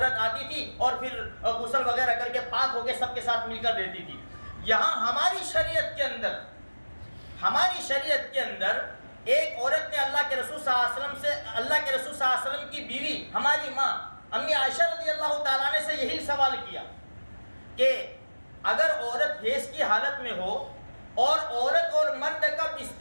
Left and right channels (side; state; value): both; inverted; correlation -1.00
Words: آتی تھی اور پھر غسل وغیرہ کر کے پاک ہو کے سب کے ساتھ مل کر دیتی تھی. یہاں ہماری شریعت کے اندر ایک عورت نے اللہ کے رسول صلی اللہ علیہ وسلم کی بیوی ہماری ماں امی عائشہ رضی اللہ تعالیٰ عنہ سے یہی سوال کیا کہ اگر عورت حیض کی حالت میں ہو اور عورت اور مرد کا